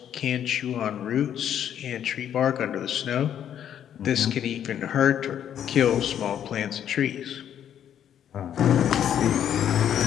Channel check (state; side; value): quieter; right; 9.8 dB